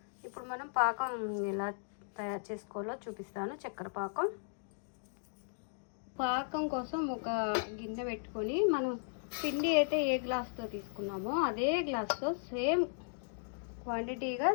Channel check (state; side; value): silent; right; digital silence